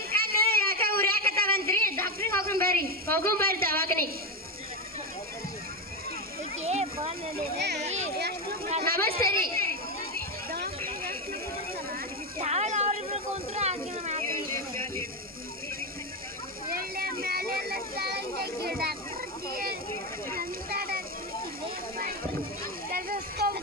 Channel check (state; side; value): normal; both; correlation 0.11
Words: ಕಣ್ಣು ಯಾಕ ಉರಿಯಾಕತ್ತಾವಂತ್ರಿ? ಡಾಕ್ಟ್ರಿಗೆ ಹೋಗೋಣ ಬರ್ರಿ ದವಾಖಾನೆ. ನಮಸ್ತೆ ರೀ.